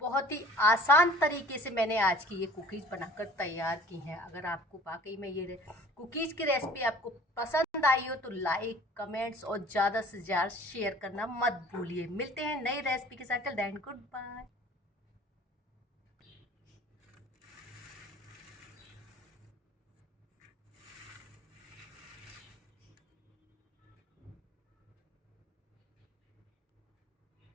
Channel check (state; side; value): normal; both; correlation 0.49